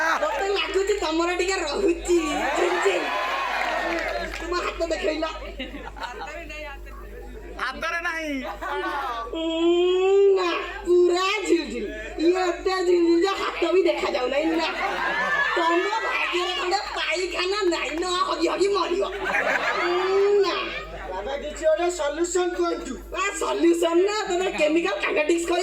ମତେ ଲାଗୁଛି ତମର ଟିକେ ରହୁଛି ଝିଂଝିଂ ତୁମ ହାତ ଦେଖେଇଲା ହାତରେ ନାହିଁ ନା ପୁରା ଝିଲଝିଲ ଇଏ ଏତେ ଝିଲଝିଲ ଯେ ହାତ ବି ଦେଖାଯାଉ ନାହିଁ ନା ତମ ଭାଗ୍ୟରେ ଖଣ୍ଡେ ପାଇଖାନା ନାହିଁ ନା ହଗି ହଗି ମରିବ ନା ବାବା କିଛି ଗୋଟେ ସଲ୍ୟୁସନ କୁହନ୍ତୁ ସଲ୍ୟୁସନ ନା ତମେ କେମିକାଲ କାଇନେଟିକ୍ସ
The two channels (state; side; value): identical; both; correlation 1.00